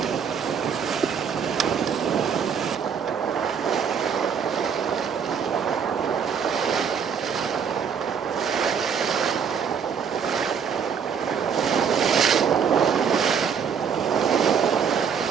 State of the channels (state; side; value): quieter; left; 7.0 dB